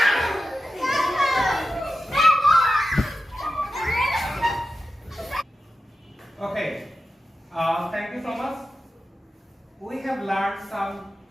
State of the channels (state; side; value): normal; both; correlation 0.92